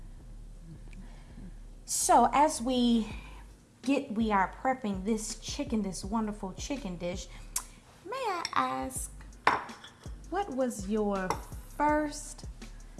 So as we are prepping this chicken, this wonderful chicken dish, may I ask, what was your first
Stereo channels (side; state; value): both; identical; correlation 1.00